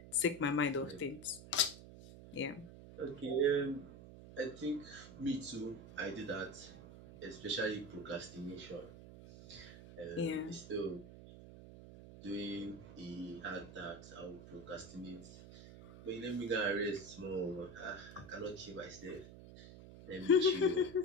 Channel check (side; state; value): right; noise; hum, 15 dB below the sound